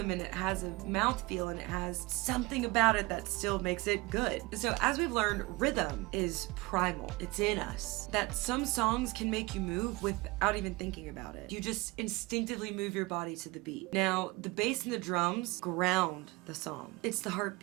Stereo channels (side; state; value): left; quieter; 22.8 dB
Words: and it has a mouthfeel and it has something about it that still makes it good. So as we've learned, rhythm is primal. It's in us. That some songs can make you move without even thinking about it. You just instinctively move your body to the beat. Now, the bass and the drums ground the song. It's the